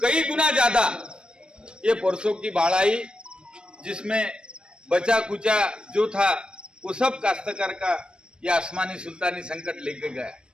कई गुना ज्यादा ये परसों की बाढ़ आई, जिसमें बचा कुचा जो था वो सब काश्तकार का ये आसमानी सुल्तानी संकट लेके गया।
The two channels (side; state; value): left; late; 0.053 ms